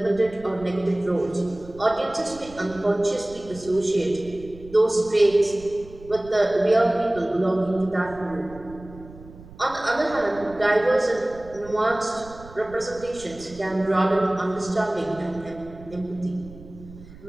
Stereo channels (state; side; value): noise; right; rumble, 19 dB below the sound